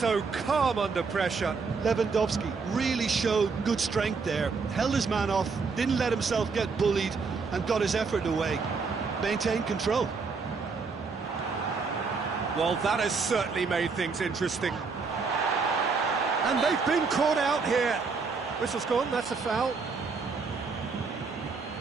calm under pressure. Lewandowski really showed good strength there, held his man off, didn't let himself get bullied, and got his effort away. Maintained control. Well, that has certainly made things interesting. And they've been caught out here. Whistle's gone, that's a foul.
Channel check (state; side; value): quieter; left; 4.8 dB